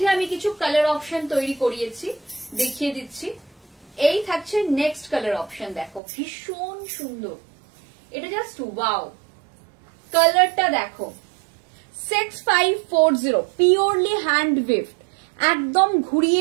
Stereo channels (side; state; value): left; drops out; at 6.0 s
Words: আমি কিছু কালার অপশন তৈরি করিয়েছি, দেখিয়ে দিচ্ছি। এই থাকছে নেক্সট কালার অপশন, দেখো ভীষণ সুন্দর, এটা জাস্ট ওয়াও, কালারটা দেখো। 6540 प्योरली हैंड विफ्ट, एकदम